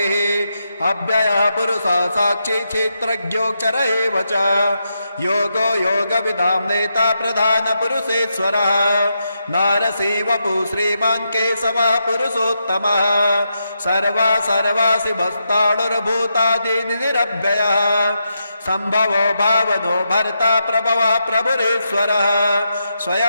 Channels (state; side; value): inverted; both; correlation -0.84